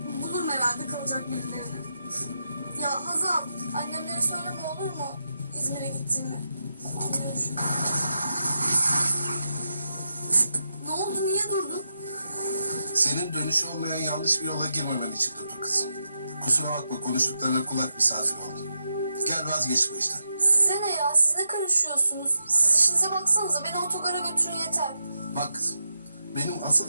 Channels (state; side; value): inverted; both; correlation -0.86